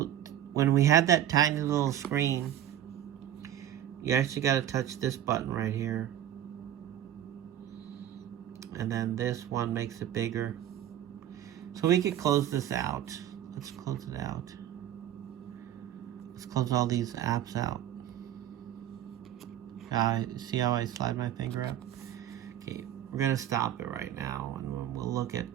when we had that tiny little screen, you actually got to touch this button right here. And then this one makes it bigger. So we could close this out. Let's close it out. Let's close all these apps out. See how I slide my finger up? Okay, we're going to stop it right now and we'll look at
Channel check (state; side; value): quieter; left; 11.2 dB